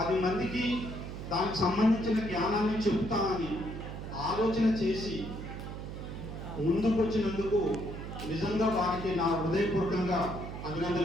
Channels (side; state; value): right; noise; hum, 8 dB below the sound